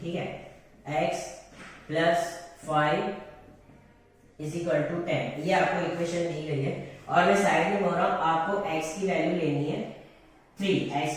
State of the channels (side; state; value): both; identical; correlation 1.00